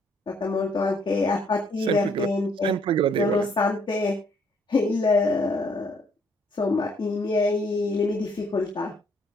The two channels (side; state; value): both; normal; correlation 0.66